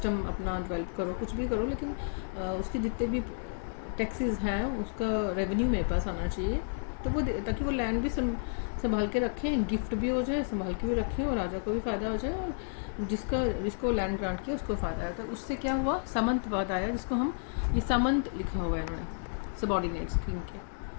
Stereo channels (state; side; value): silent; right; digital silence